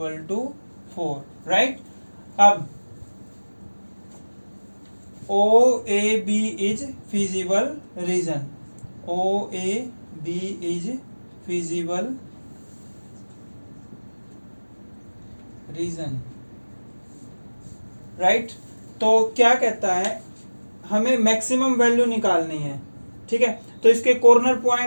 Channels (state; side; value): inverted; both; correlation -1.00